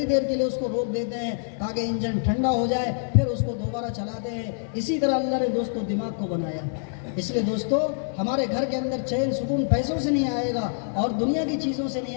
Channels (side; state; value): right; silent; 61 dB below the other